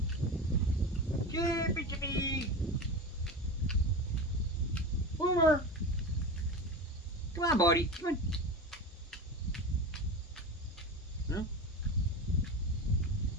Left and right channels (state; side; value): normal; both; correlation 0.26